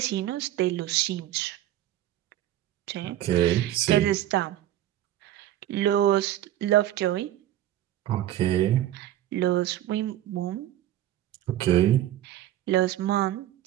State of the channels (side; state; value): left; quieter; 13.0 dB